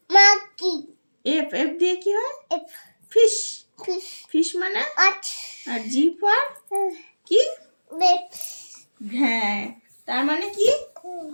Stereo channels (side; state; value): both; inverted; correlation -1.00